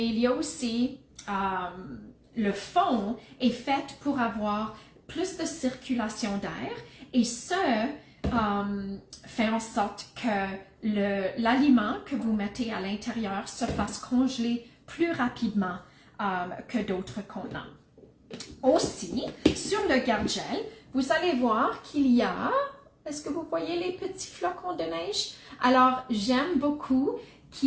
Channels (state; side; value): identical; both; correlation 1.00